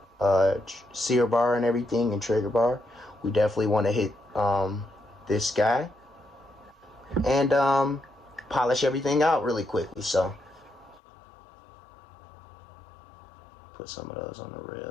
sear bar and everything, and trigger bar. We definitely want to hit this guy and polish everything out really quickly. So put some of those on the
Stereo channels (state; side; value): drops out; right; at 11.0 s